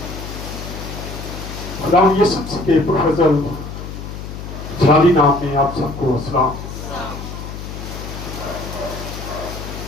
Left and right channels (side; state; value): left; noise; hum, 9 dB below the sound